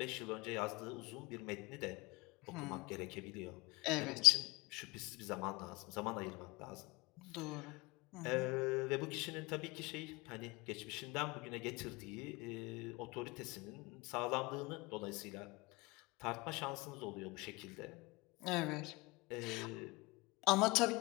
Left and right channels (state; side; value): quieter; right; 23.7 dB